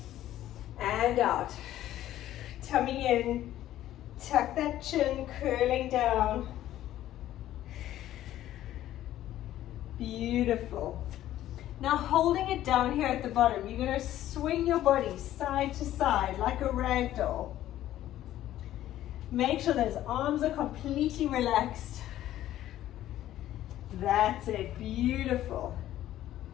and out. Tummy in, tuck that chin, curling down. Beautiful. Now holding it down here at the bottom, you're going to swing your body side to side like a rag doll. Make sure those arms are completely relaxed. That's it. Beautiful.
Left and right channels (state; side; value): quieter; right; 13.2 dB